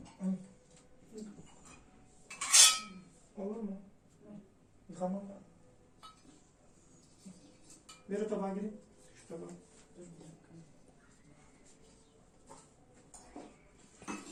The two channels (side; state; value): both; identical; correlation 1.00